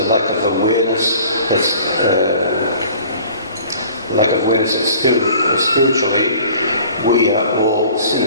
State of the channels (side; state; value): both; inverted; correlation -0.49